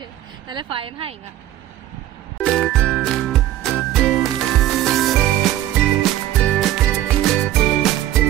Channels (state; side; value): quieter; left; 13.4 dB